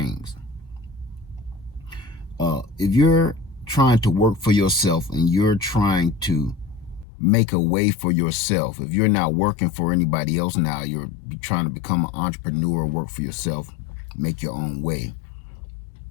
If you're trying to work for yourself and you're trying to make a way for yourself, if you're not working for anybody else now, you're trying to become an entrepreneur, work for yourself, make your own way,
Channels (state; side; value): drops out; right; at 7.1 s